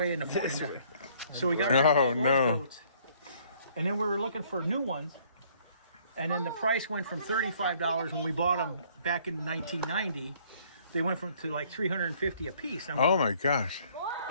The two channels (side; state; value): both; inverted; correlation -0.62